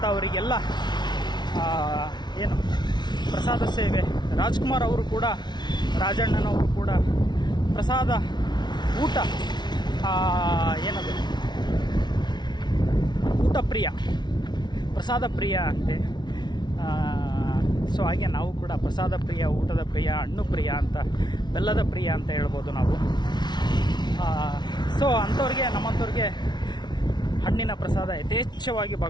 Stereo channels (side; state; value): right; late; 0.20 ms